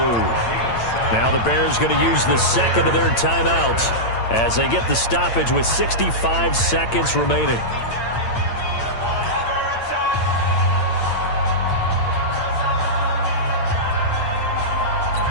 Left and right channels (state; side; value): late; right; 8.8 ms